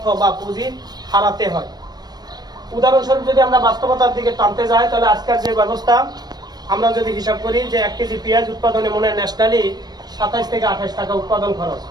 বা পুঁজি হারাতে হয়। উদাহরণস্বরূপ যদি আমরা বাস্তবতার দিকে টানতে যাই, তাহলে আজকের যে ব্যবস্থা আমরা যদি হিসাব করি যে 1 কেজি পেঁয়াজ উৎপাদনে মনে হয় ন্যাশনালি 27 থেকে 28 টাকা উৎপাদন খরচ।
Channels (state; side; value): late; left; 0.19 ms